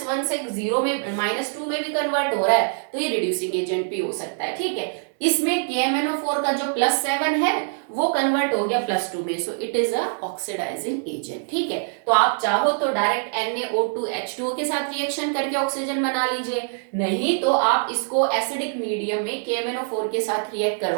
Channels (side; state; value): left; silent; 59 dB below the other